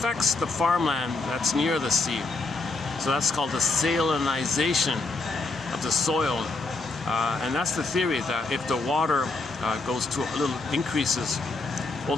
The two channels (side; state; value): right; quieter; 3.6 dB